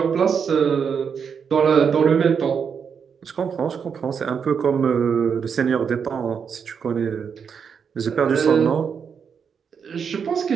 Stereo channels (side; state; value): left; quieter; 6.7 dB